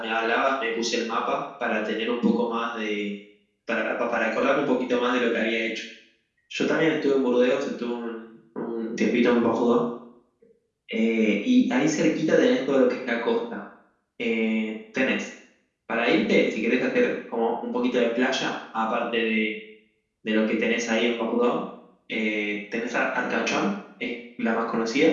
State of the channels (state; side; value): identical; both; correlation 1.00